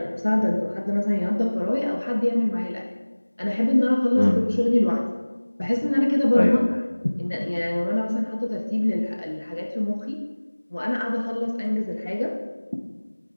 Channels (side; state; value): both; inverted; correlation -1.00